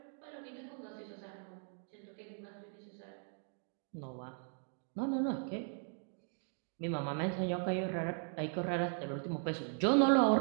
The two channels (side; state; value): left; silent; 52 dB below the other